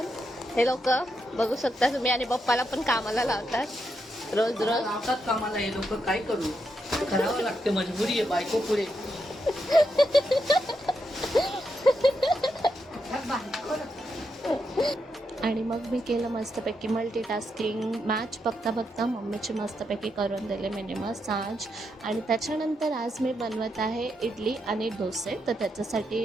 हे लोक बघू शकता तुम्ही, आणि पप्पाला पण कामाला लावतात रोज रोज. लावतात कामाला हे लोक, काय करू, करावं लागते, मजबुरी आहे, बायको पुढे. आणि मग मी केलं मस्तपैकी मल्टीटास्किंग. मॅच बघता बघता मम्मीची मस्तपैकी करून दिले मिनी मसाज. आणि त्याच्यानंतर आज मी बनवत आहे इडली आणि डोसे. तर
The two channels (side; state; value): both; normal; correlation 0.82